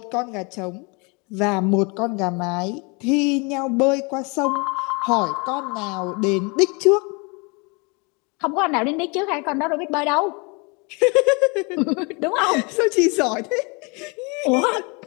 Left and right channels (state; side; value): quieter; right; 30.4 dB